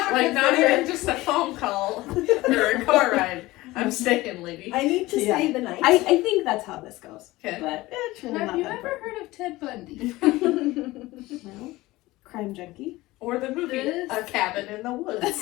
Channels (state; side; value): quieter; right; 19.1 dB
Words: even just a phone call or a car ride. I'm staying, lady. I need to stay the night. I think that's how this goes. Okay. But it's really Have not you that ever heard of Ted Bundy? Well, crime junkie. Or the movie, A Cabin in the Woods.